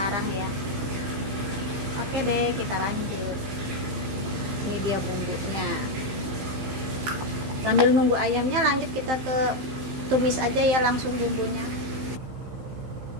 ya. Oke deh, kita lanjut. Ini dia bumbunya. Sambil nunggu ayamnya, lanjut kita ke tumis aja ya langsung bumbunya.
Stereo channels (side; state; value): left; late; 15 ms